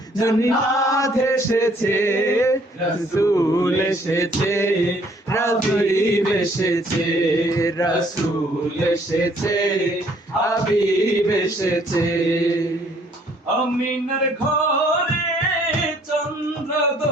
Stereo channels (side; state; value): both; normal; correlation 0.62